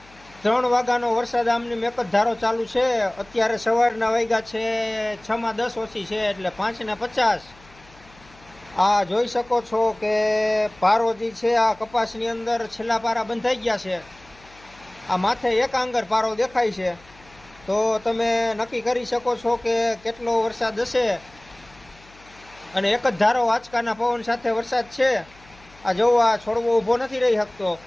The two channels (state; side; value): noise; left; hum, 26 dB below the sound